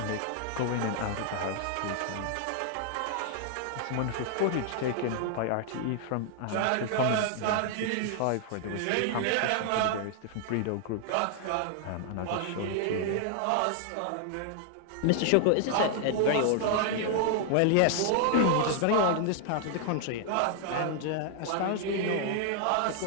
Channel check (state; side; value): different; both; correlation 0.00